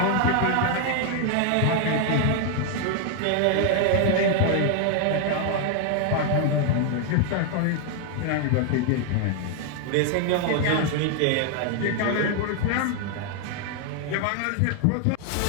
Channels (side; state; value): both; different; correlation 0.00